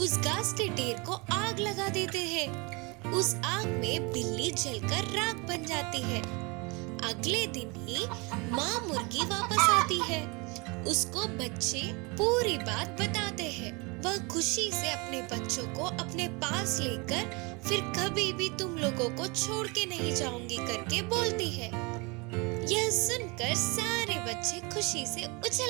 घास के ढेर को आग लगा देते हैं। उस आग में बिल्ली जलकर राख बन जाती है। अगले दिन ही माँ मुर्गी वापस आती है। उसको बच्चे पूरी बात बताते हैं। वह खुशी से अपने बच्चों को अपने पास लेकर फिर कभी भी तुम लोगों को छोड़ के नहीं जाऊंगी करके बोलती है। यह सुनकर सारे बच्चे खुशी से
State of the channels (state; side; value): quieter; left; 28.3 dB